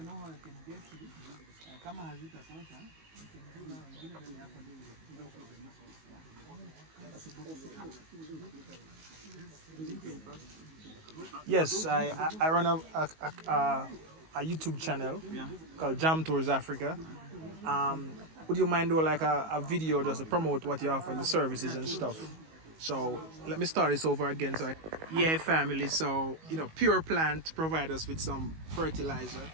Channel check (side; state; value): left; late; 19 ms